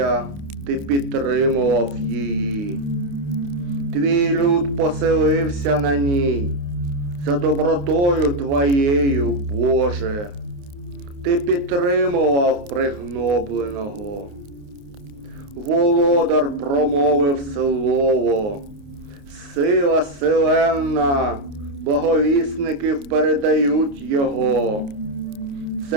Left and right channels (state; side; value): late; left; 28 ms